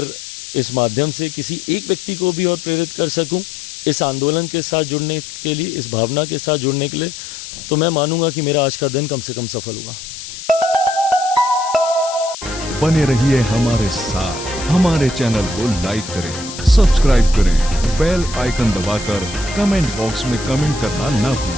इस माध्यम से किसी एक व्यक्ति को भी और प्रेरित कर सकूं इस आंदोलन के साथ जुड़ने के लिए, इस भावना के साथ जुड़ने के लिए, तो मैं मानूंगा कि मेरा आज का दिन कम से कम सफल हुआ। बने रहिए हमारे साथ, हमारे चैनल को लाइक करें, सब्सक्राइब करें, बेल आइकन दबाकर कमेंट बॉक्स में कमेंट करना ना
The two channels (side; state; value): left; noise; hiss, 11 dB below the sound